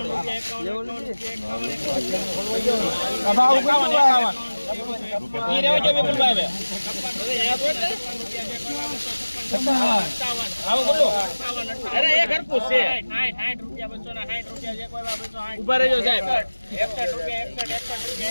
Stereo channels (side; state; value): both; inverted; correlation -1.00